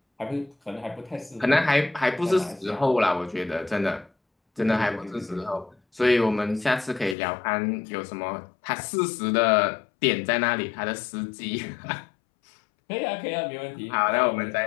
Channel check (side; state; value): right; drops out; at 7.2 s